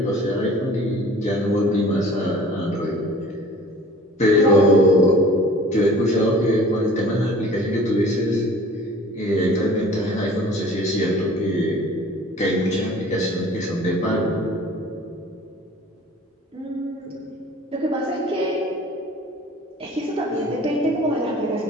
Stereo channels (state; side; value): normal; both; correlation 0.47